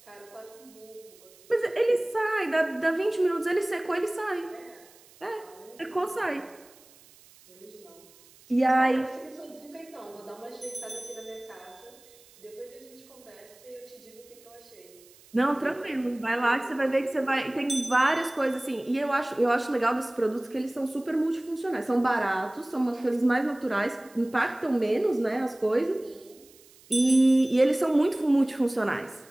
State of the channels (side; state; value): right; noise; hiss, 26 dB below the sound